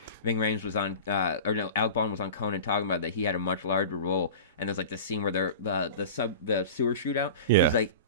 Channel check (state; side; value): inverted; both; correlation -0.34